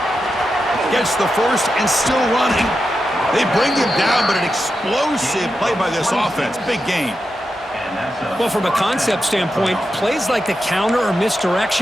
Gets the first and still running. They bring him down, but an explosive play by this offense. Big gain. Well, from a concept standpoint, plays like the counter or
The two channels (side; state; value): both; normal; correlation 0.89